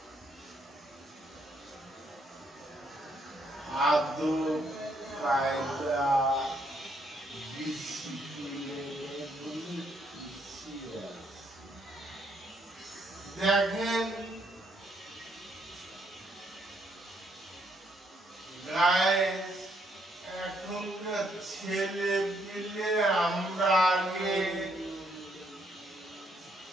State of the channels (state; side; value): normal; both; correlation 0.72